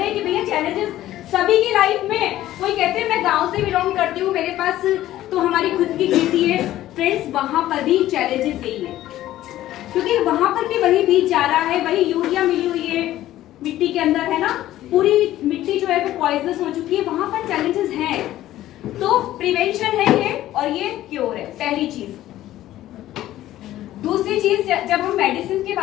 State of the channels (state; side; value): quieter; right; 14.1 dB